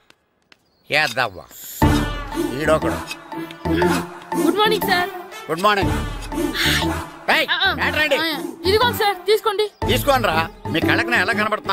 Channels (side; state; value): both; identical; correlation 1.00